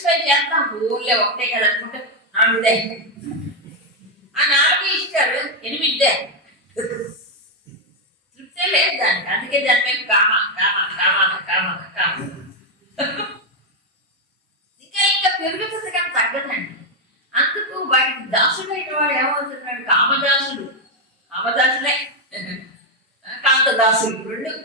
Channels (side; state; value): both; normal; correlation 0.02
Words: చేస్తాం, ఊళ్ళో ఒకటే కదా అనుకుంటే 4 ఆ 4 ఇస్తారు, 8 తృప్తే లేదు దానికి. అందుకే దాని మీద కామ కామ కామ కామ కామ ఇంకా ఇంకా పెరుగుతుంది కానీ తగ్గదండి. అందుకు వాటికి దాసుడైన వాడు ఏమవుతున్నాడు, కామదాసుడు. కామదాసులే కాంతదాసులు, 2